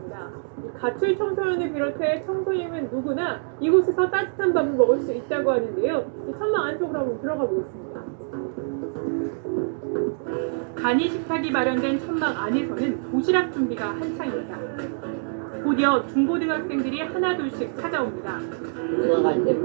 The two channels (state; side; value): silent; left; digital silence